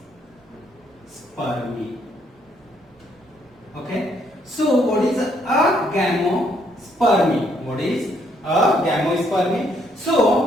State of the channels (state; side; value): normal; both; correlation 0.70